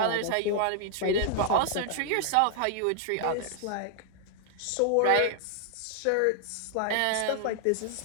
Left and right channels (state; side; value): different; both; correlation -0.01